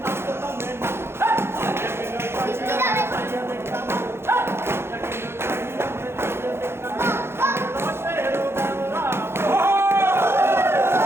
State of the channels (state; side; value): late; left; 0.12 ms